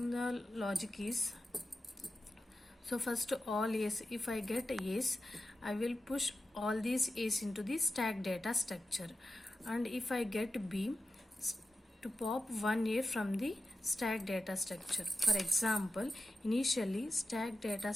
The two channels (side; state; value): both; normal; correlation 0.91